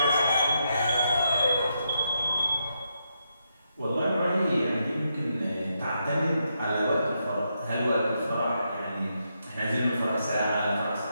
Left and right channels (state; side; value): inverted; both; correlation -0.81